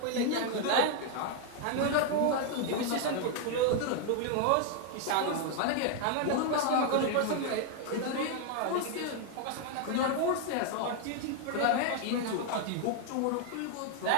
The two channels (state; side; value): different; both; correlation 0.00